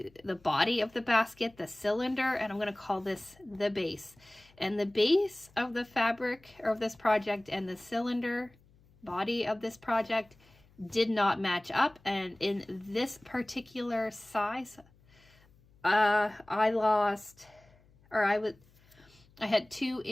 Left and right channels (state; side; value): noise; left; hum, 29 dB below the sound